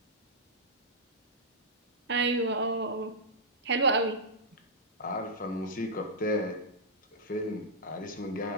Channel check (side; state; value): both; normal; correlation -0.11